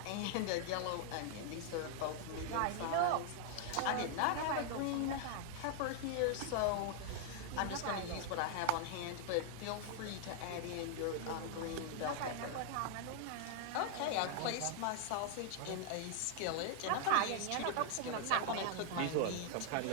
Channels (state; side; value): different; both; correlation 0.00